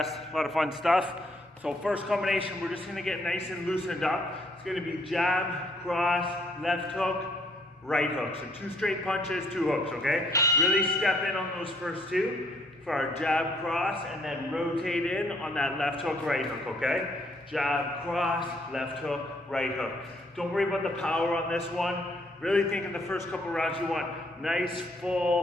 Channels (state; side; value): normal; both; correlation 0.67